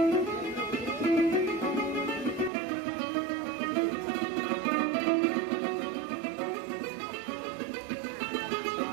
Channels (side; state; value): left; drops out; at 2.5 s